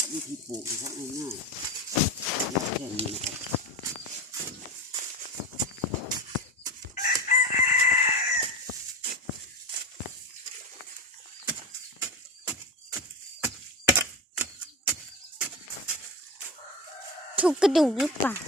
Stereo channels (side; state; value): both; normal; correlation 0.25